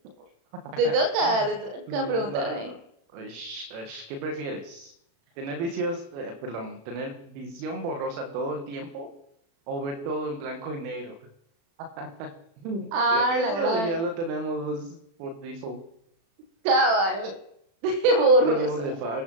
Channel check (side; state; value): left; late; 36 ms